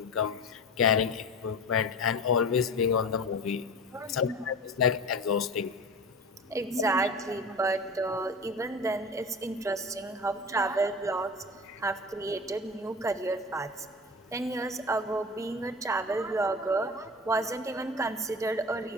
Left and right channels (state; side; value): normal; both; correlation 0.32